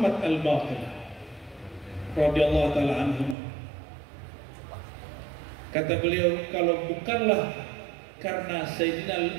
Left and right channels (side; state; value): left; drops out; at 3.4 s